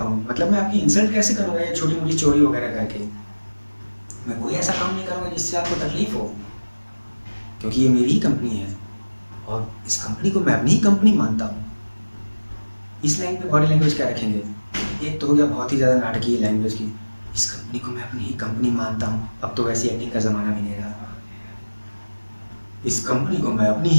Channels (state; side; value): inverted; both; correlation -1.00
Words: मतलब मैं आपकी इंसल्ट कैसे करूँगा ये छोटी मोटी चोरी वगैरह करके? मैं कोई ऐसा काम नहीं करूँगा जिससे आपको तकलीफ हो, क्योंकि ये मेरी ही कंपनी है और इस कंपनी को मैं अपनी ही कंपनी मानता हूँ। इस लाइन पे बॉडी लैंग्वेज क्या रखेंगे? एक तो हो गया बहुत ही ज़्यादा नाटकीय लैंग्वेज की, इस कंपनी को मैं अपनी ही कंपनी मानता हूँ। अब तो वैसी एक्टिंग का ज़माना भी नहीं रहा। इस कंपनी को मैं अपनी